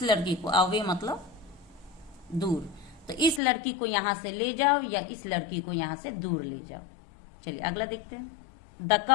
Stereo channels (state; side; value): drops out; right; at 3.4 s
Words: लड़की को, अवे मतलब दूर, तो इस लड़की को यहां से ले जाओ या इस लड़की को यहां से दूर ले जाओ। चलिए अगला देखते हैं। The